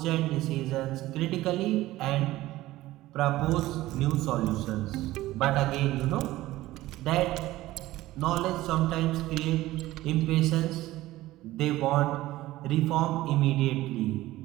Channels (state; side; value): quieter; left; 16.6 dB